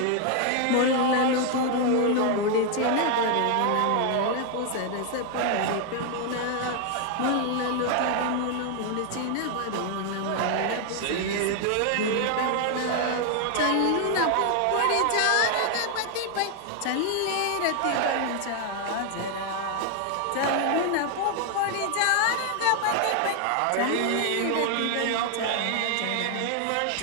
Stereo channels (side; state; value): both; different; correlation 0.00